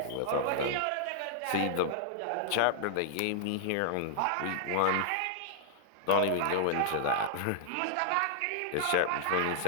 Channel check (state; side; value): different; both; correlation -0.01